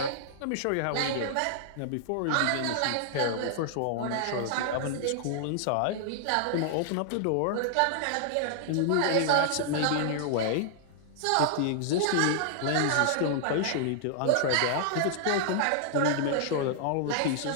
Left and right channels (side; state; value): both; different; correlation -0.01